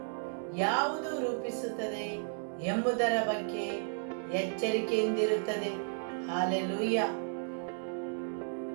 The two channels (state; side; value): silent; left; digital silence